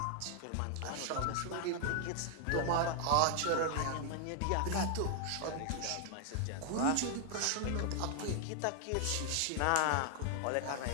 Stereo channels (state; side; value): different; both; correlation 0.00